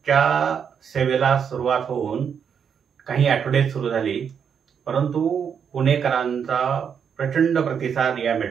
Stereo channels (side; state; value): left; quieter; 7.4 dB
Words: सेवेला सुरुवात होऊन काही आठवडे सुरू झाली, परंतु पुणेकरांचा प्रचंड प्रतिसाद या